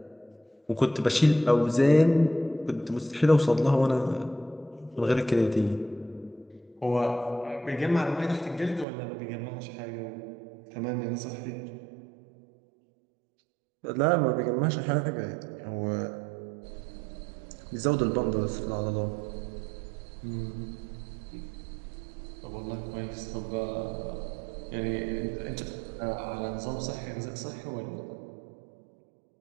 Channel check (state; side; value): drops out; left; at 8.8 s